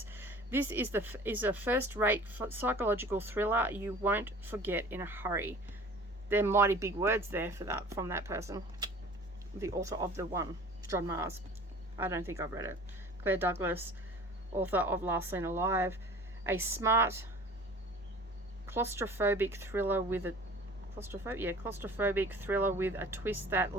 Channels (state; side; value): normal; both; correlation 0.44